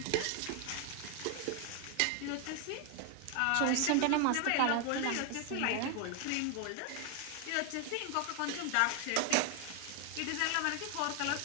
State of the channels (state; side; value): different; both; correlation 0.01